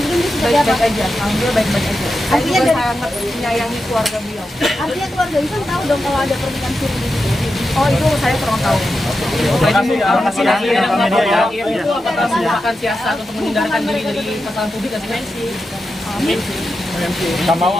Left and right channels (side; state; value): both; normal; correlation 0.89